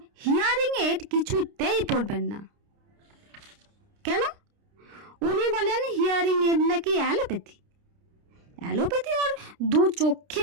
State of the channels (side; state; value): left; late; 30 ms